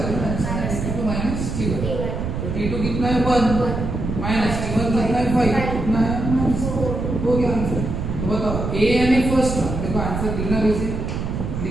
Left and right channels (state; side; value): noise; right; rumble, 3 dB below the sound